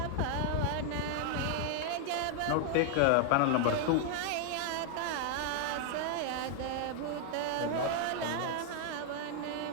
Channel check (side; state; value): both; different; correlation 0.00